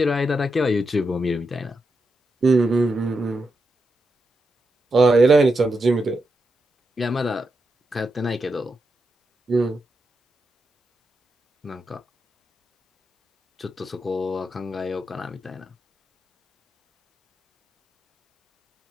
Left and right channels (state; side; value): normal; both; correlation 0.85